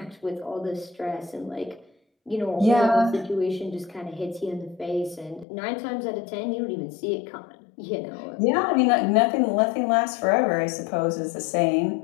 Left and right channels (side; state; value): right; drops out; at 5.5 s